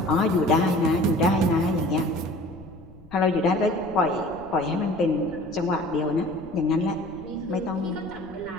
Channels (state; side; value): noise; left; rumble, 22 dB below the sound